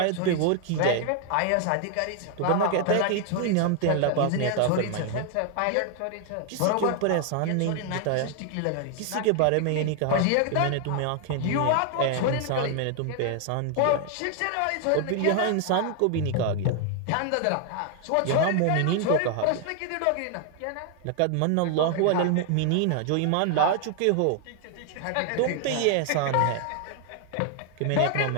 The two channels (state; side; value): different; both; correlation 0.00